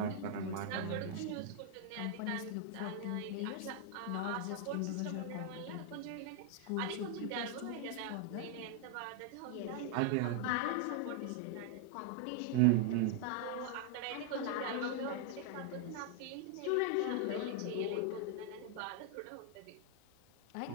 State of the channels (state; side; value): different; both; correlation 0.00